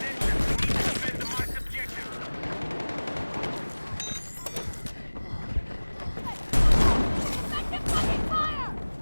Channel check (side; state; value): both; inverted; correlation -1.00